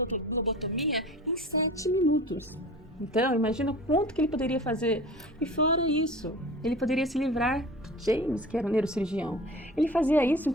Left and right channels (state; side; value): normal; both; correlation 0.39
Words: lobotomia em 7 minutos. Então, imagina o quanto que ele poderia fazer. E fora isso, ele poderia se livrar do James, que era o neurocirurgião. Ele fazia isso em